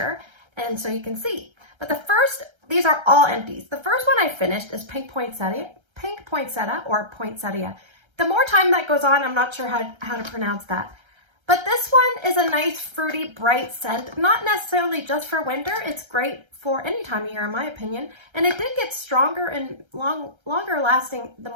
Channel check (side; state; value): left; late; 1.3 ms